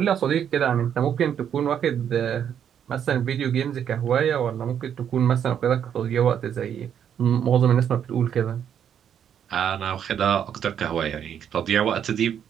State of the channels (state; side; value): quieter; left; 8.8 dB